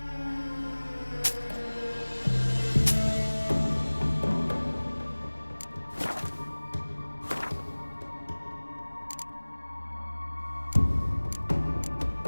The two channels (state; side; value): inverted; both; correlation -1.00